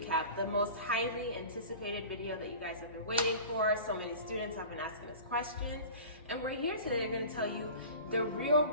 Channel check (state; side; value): inverted; both; correlation -0.38